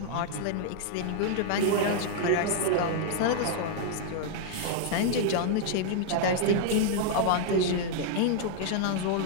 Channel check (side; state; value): both; different; correlation -0.01